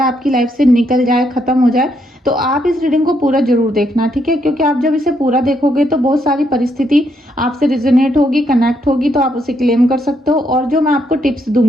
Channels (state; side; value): normal; both; correlation 0.75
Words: आपकी लाइफ से निकल जाए, खत्म हो जाए, तो आप इस रीडिंग को पूरा जरूर देखना, ठीक है। क्योंकि आप जब इसे पूरा देखोगे तो बहुत सारी परिस्थिति आपसे रिजोनेट होगी, कनेक्ट होगी, तो आप उसे क्लेम कर सकते हो। और जो मैं आपको टिप्स